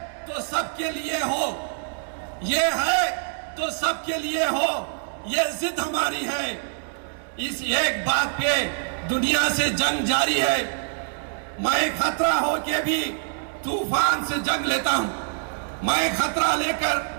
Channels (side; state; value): left; silent; digital silence